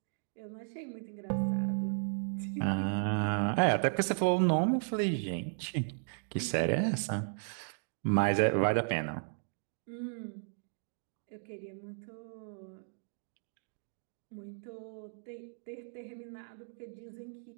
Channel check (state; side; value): silent; left; digital silence